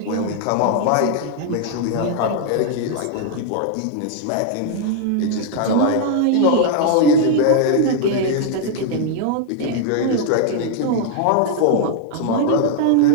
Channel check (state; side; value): different; both; correlation 0.00